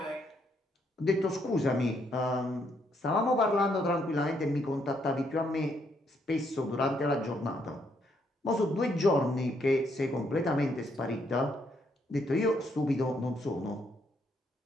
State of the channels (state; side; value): normal; both; correlation 0.73